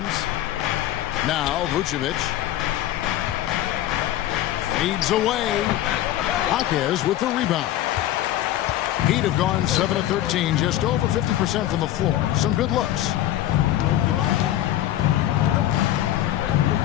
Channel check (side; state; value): right; quieter; 13.3 dB